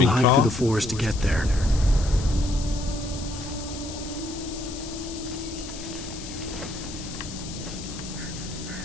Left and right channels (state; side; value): noise; left; hiss, 12 dB below the sound